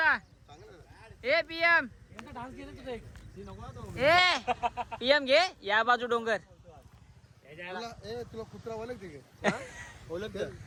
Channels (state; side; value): identical; both; correlation 1.00